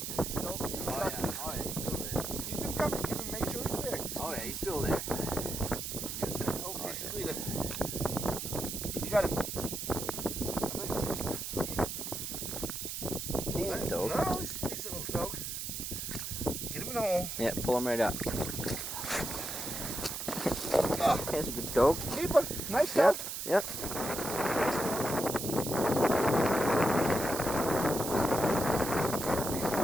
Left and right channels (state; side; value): noise; right; hiss, 5 dB below the sound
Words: Still, Oh yeah, he's still there. Keep him coming. Keep him. Make sure he's there. Just Oh keep yeah, he's still there. Oh, here's your leader. You got him. How big is he? Decent dog. No, he's a decent little dog. Get him in the hole. Yeah, pull him right up. Oh, That's a good dog. keeper. Nice dog. Yep. Nice dog.